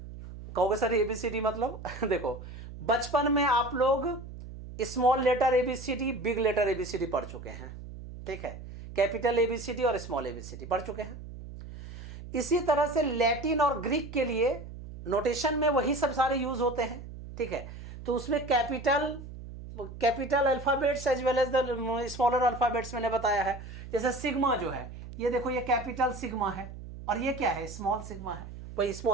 कहोगे सर ABCD मतलब देखो बचपन में आप लोग small letter A B C D, big letter A B C D पढ़ चुके हैं, ठीक है, कैपिटल एबीसीडी और स्मॉल एबीसीडी पढ़ चुके हैं। इसी तरह से लैटिन और ग्रीक के लिए नोटेशन में वही सब सारे यूज होते हैं, ठीक है। तो उसमें capital alphabets as well as the smaller alphabets मैंने बताया है। जैसे सिग्मा जो है, ये देखो ये कैपिटल सिग्मा है और ये क्या है, स्मॉल सिग्मा है, वही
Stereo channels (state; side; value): noise; right; hum, 12 dB below the sound